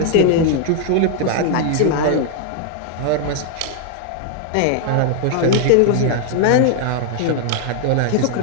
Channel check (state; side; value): different; both; correlation 0.00